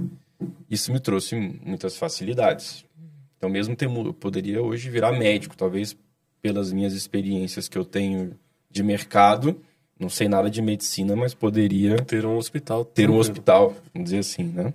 Isso me trouxe muitas facilidades. Então, mesmo eu poderia hoje virar médico, talvez pelas minhas experiências que eu tenho de mercado. Não sei nada de medicina, mas poderia... Ter um hospital. Vamos dizer assim, né?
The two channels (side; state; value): both; identical; correlation 1.00